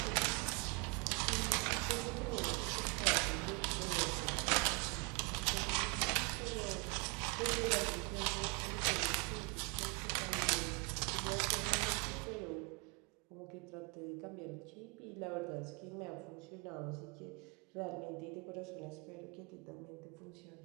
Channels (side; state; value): left; quieter; 31.0 dB